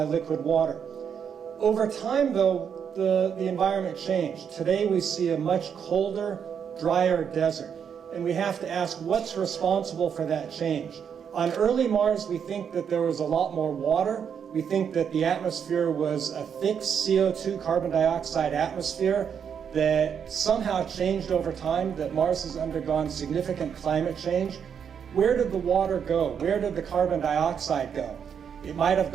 liquid water. Over time, though, the environment changed. Today we see a much colder, drier desert. And we have to ask, what's responsible for that change? On early Mars, we think that there was a lot more water. We think that the atmosphere was a thick CO2, carbon dioxide atmosphere that somehow changed over time, that Mars has undergone significant climate change. Where did the water go? Where did the carbon dioxide go? It might have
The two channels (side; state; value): left; quieter; 7.6 dB